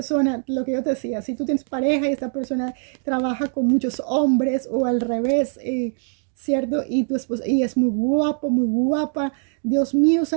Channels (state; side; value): silent; left; 58 dB below the other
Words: lo que yo te decía, si tú tienes pareja y esta persona trabaja con muchos hombres o al revés, ¿cierto? Y tu esposa, y es muy guapo, muy guapa. Dios mío